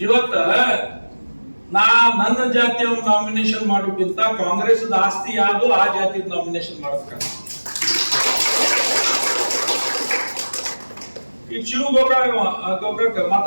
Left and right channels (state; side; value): inverted; both; correlation -1.00